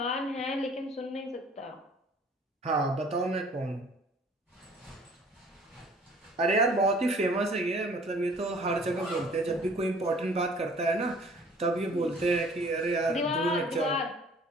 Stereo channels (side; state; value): both; normal; correlation 0.52